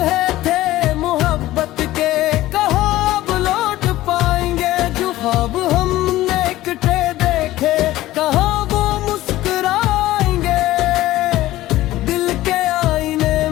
थे मोहब्बत के कहाँ लौट पाएंगे, जो ख्वाब हमने इकट्ठे देखे कहाँ वो मुस्कुराएंगे। दिल के आईने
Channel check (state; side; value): quieter; right; 16.0 dB